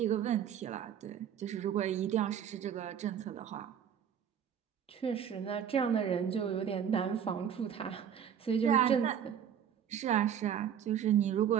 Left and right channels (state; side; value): quieter; left; 8.7 dB